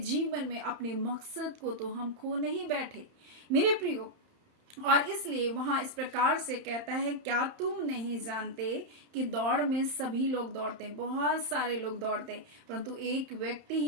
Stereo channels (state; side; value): late; left; 31 ms